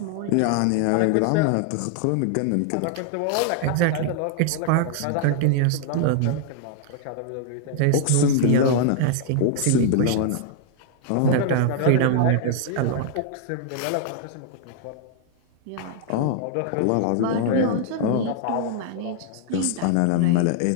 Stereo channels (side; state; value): both; different; correlation -0.01